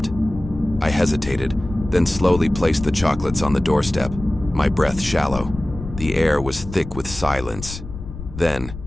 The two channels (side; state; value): left; noise; rumble, 11 dB below the sound